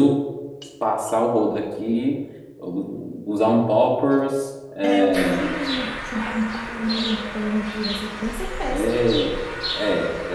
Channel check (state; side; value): identical; both; correlation 1.00